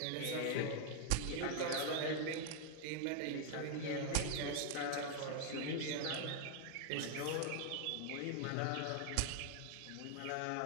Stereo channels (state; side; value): different; both; correlation 0.00